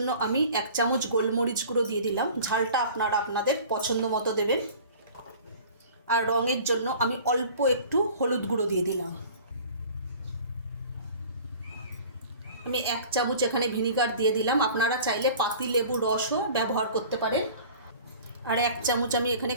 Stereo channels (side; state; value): both; inverted; correlation -0.44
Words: আমি 1 চামচ গোলমরিচ গুঁড়ো দিয়ে দিলাম। ঝালটা আপনারা আপনাদের পছন্দ মতো দেবেন। আর রঙের জন্য আমি অল্প একটু হলুদ গুঁড়ো দিয়ে দিলাম। আমি 1 চামচ এখানে ভিনিগার দিয়ে দিলাম। আপনারা চাইলে পাতিলেবুর রসও ব্যবহার করতে পারেন। আর 1 চামচ আমি এখানে